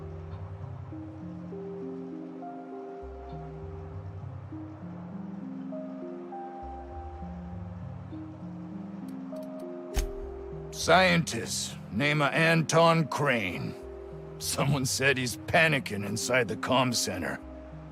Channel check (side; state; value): both; identical; correlation 1.00